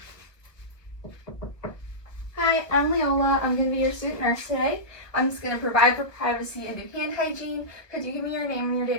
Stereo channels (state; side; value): late; right; 1.4 ms